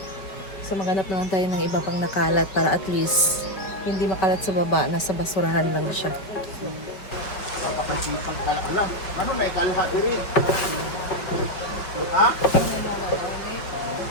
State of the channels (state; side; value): late; right; 5.2 ms